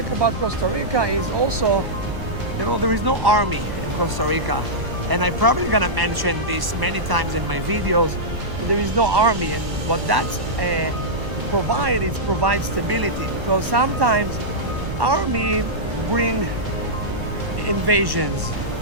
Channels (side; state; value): left; late; 1.1 ms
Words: about Costa Rica is also, there is no army in Costa Rica. And I'm probably gonna mention this many times in my videos. There is no army, and what that's provides stability, because sometimes army bring invasions,